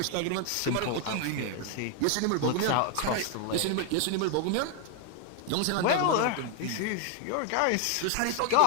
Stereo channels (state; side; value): different; both; correlation 0.00